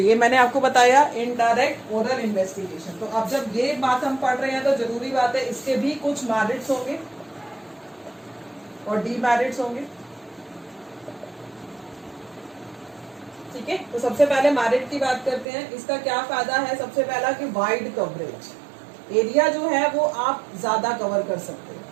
मैंने आपको बताया इनडायरेक्ट ओरल इन्वेस्टिगेशन। तो अब जब ये बात हम पढ़ रहे हैं तो जरूरी बात है इसके भी कुछ मेरिट्स होंगे और डीमेरिट्स होंगे। ठीक है, तो सबसे पहले मेरिट की बात करते हैं। इसका क्या फायदा है? सबसे पहला कि वाइड कवरेज, एरिया जो है वो आप ज्यादा कवर कर सकते हैं,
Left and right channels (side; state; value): left; drops out; at 15.5 s